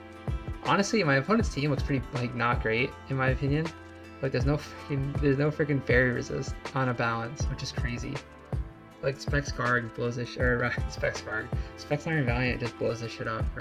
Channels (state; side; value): identical; both; correlation 1.00